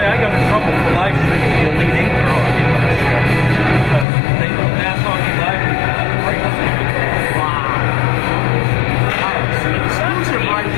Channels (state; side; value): drops out; right; at 4.0 s